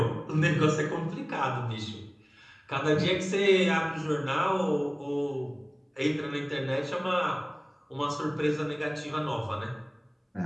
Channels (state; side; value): identical; both; correlation 1.00